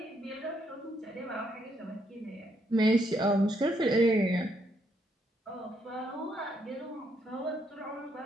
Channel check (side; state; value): both; normal; correlation 0.74